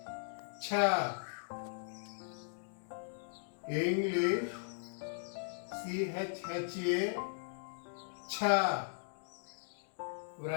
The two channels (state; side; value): silent; right; digital silence